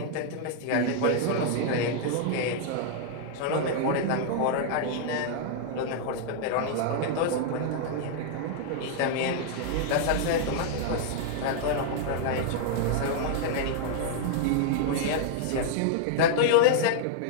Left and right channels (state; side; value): different; both; correlation -0.01